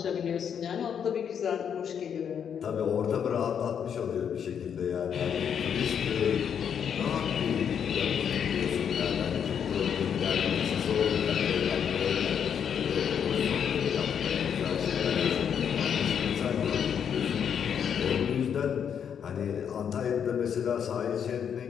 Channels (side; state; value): right; quieter; 8.0 dB